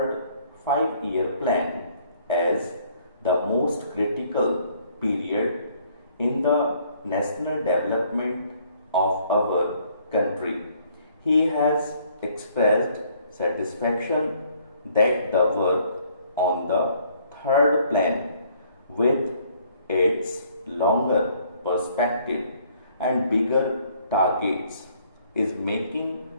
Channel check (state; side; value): inverted; both; correlation -0.63